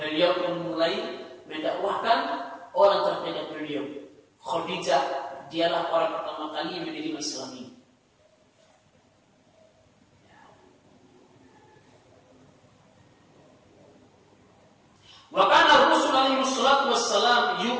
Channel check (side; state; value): both; identical; correlation 1.00